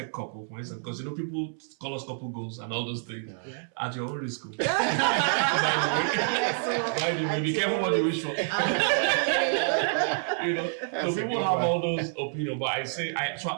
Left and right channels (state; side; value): silent; left; 59 dB below the other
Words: couple, for instance, because people call us couple goals and all those things at your own risk. By the way, be careful what you wish for. So people have all those opinions, but I say,